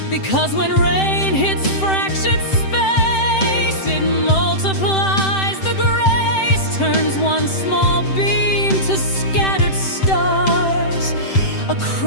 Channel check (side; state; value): right; late; 7.8 ms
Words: because when rain hits fractured space, it multiplies the grace, turns one small beam to scattered stars